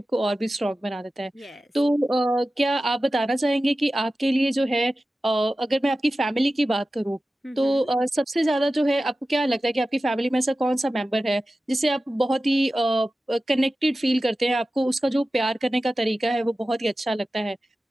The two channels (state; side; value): normal; both; correlation 0.95